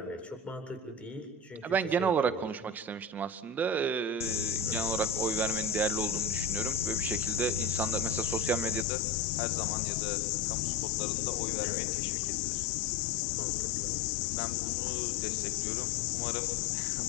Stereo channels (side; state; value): right; drops out; at 8.8 s